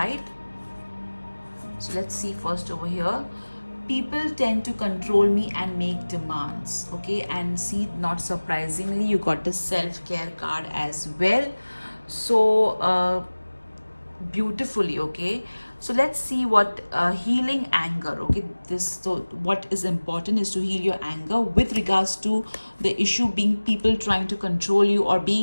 so let's see first over here. People tend to control me and make demands. Okay, and see, not surprisingly, you got the self-care card as well. So beautifully. Okay, so let's see what healing anger. Okay, so what is important is to heal your anger with regards to the issue being people trying to control you or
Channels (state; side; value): inverted; both; correlation -1.00